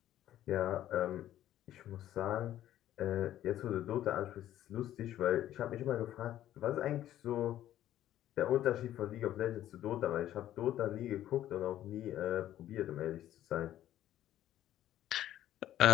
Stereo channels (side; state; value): right; quieter; 12.6 dB